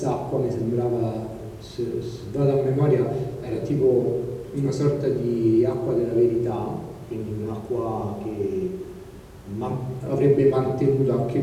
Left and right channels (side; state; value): both; identical; correlation 1.00